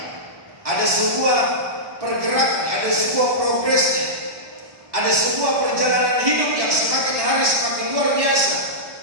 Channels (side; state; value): left; late; 1.7 ms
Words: Ada sebuah pergerakan, ada sebuah progresnya, ada sebuah perjalanan hidup yang semakin hari semakin luar biasa,